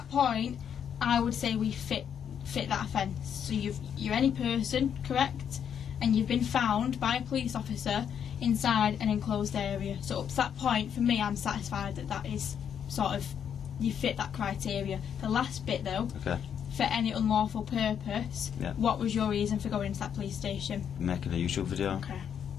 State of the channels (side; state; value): right; quieter; 8.3 dB